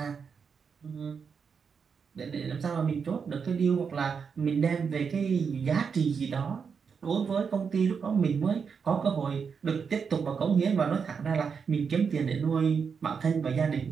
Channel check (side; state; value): left; quieter; 6.1 dB